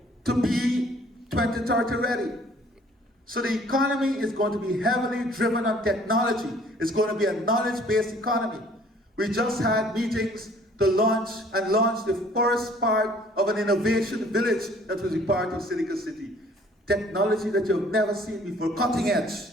to be 2030 ready. So the economy is going to be heavily driven on technology. It's going to be a knowledge-based economy. We just had meetings to launch the first part of an innovation village that will be part of Silicon City. Technology that you've never seen before, cutting edge.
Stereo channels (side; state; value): both; normal; correlation 0.56